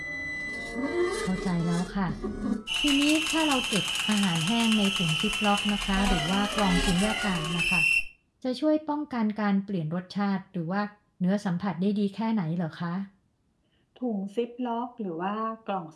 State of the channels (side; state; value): both; identical; correlation 1.00